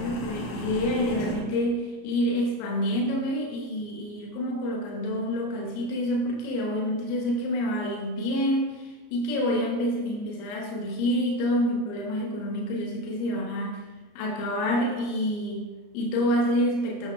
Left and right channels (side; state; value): right; late; 34 ms